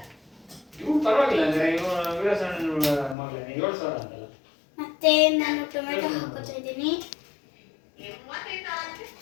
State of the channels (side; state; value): right; drops out; at 3.2 s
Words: ಮತ್ತೆ ನಾನು ಟೊಮೆಟೊ ಹಾಕೋತಾ ಇದ್ದೀನಿ.